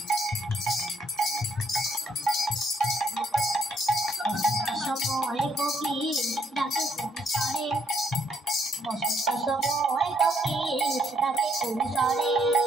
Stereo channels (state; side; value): normal; both; correlation 0.69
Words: সময় কোকিল ডাকে কুসরে, বসন্ত সময় কোকিল ডাকে কুসরে,